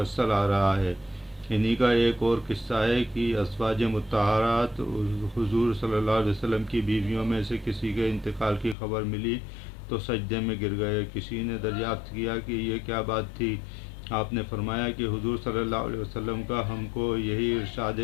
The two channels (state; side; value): drops out; right; at 8.8 s